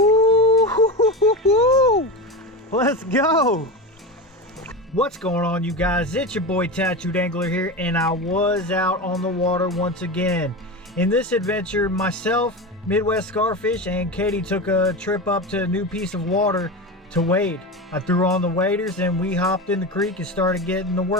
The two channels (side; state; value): both; normal; correlation 0.23